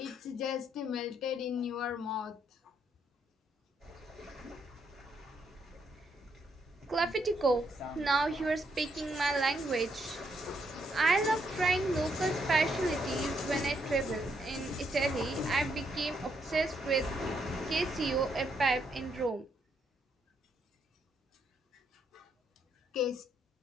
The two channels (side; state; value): both; normal; correlation 0.75